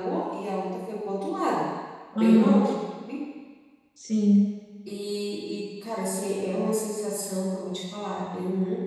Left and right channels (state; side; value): identical; both; correlation 1.00